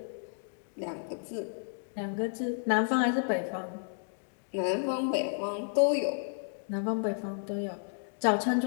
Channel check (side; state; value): right; silent; digital silence